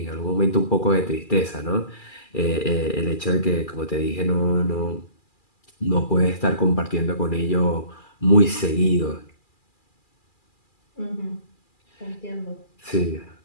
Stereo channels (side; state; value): right; late; 2.4 ms